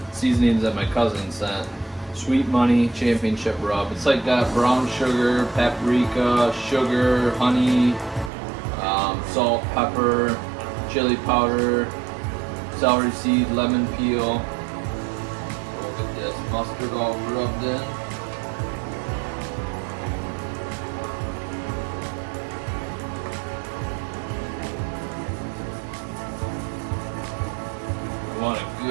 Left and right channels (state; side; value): drops out; left; at 8.3 s